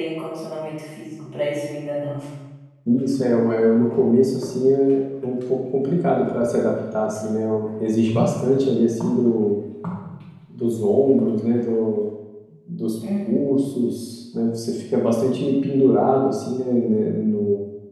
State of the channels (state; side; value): identical; both; correlation 1.00